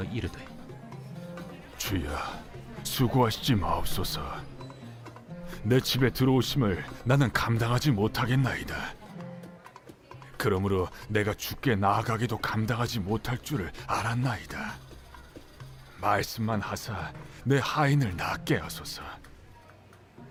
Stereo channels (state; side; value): identical; both; correlation 1.00